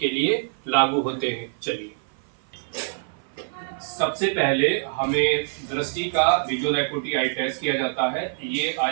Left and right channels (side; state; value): left; silent; 56 dB below the other